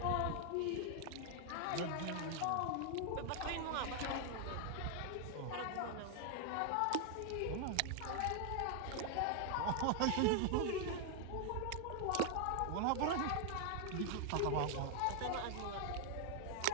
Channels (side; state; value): both; different; correlation 0.00